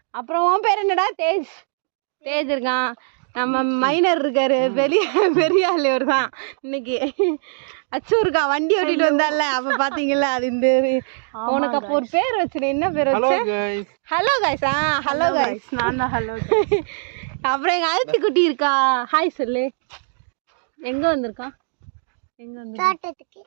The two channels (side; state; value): left; silent; digital silence